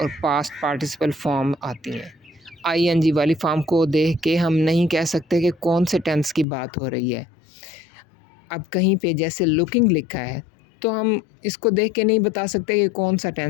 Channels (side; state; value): right; drops out; at 6.5 s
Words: और पास्ट पार्टिसिपल फॉर्म आती हैं। आईएनजी वाली फॉर्म को देख के हम नहीं कह सकते कि कौन से टेंस की बात हो रही है। अब कहीं पे जैसे लुकिंग लिखा है तो हम इसको देख के नहीं बता सकते कि कौन सा